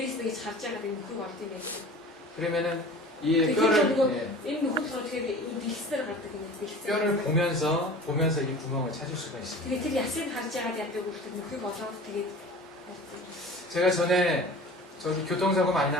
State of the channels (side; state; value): both; normal; correlation 0.40